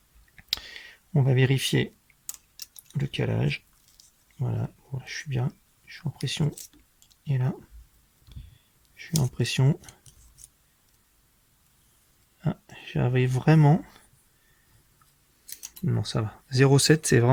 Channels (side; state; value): both; identical; correlation 1.00